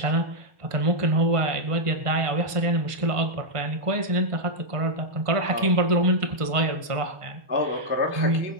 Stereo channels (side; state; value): left; late; 1.5 ms